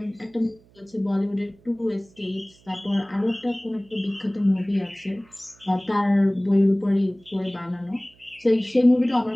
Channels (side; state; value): right; noise; hum, 29 dB below the sound